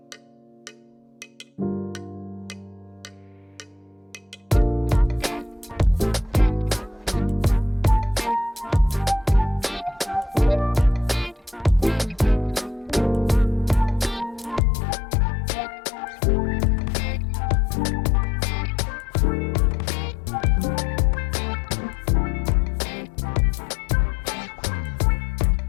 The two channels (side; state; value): right; drops out; at 14.6 s